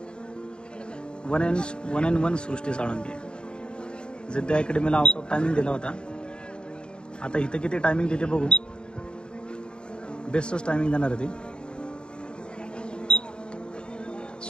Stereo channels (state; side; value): late; right; 0.051 ms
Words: 1&1 सृष्टी साळुंके. जिद्द अकॅडमीला आउट ऑफ टायमिंग दिला होता. आता इथं किती टायमिंग देते बघू. बेस्टच टायमिंग देणार आहे ती.